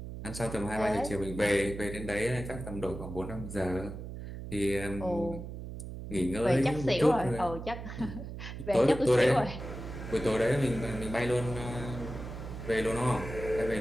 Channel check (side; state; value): right; noise; hum, 9 dB below the sound